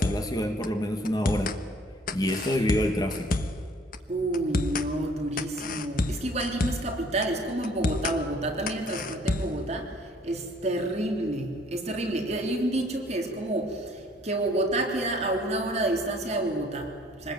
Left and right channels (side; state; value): both; normal; correlation 0.58